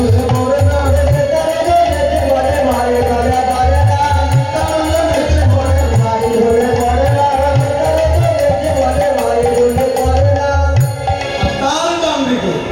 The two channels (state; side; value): identical; both; correlation 1.00